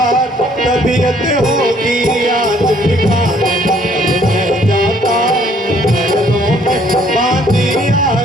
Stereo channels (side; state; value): both; normal; correlation 0.62